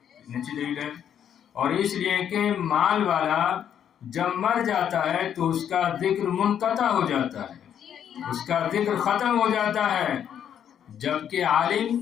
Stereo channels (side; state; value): right; quieter; 9.2 dB